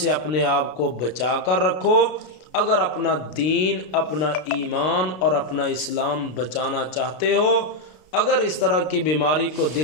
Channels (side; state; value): right; late; 33 ms